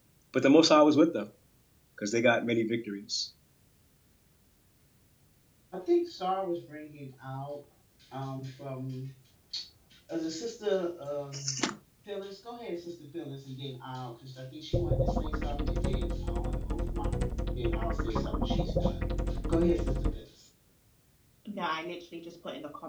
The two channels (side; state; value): both; identical; correlation 1.00